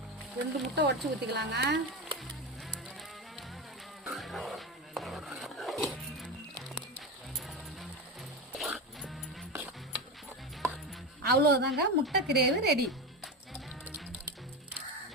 ரெண்டு முட்டை உடச்சி ஊற்றிக்கலாங்க. அவ்வளோதாங்க, முட்டை கிரேவி ரெடி.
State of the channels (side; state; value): both; normal; correlation 0.20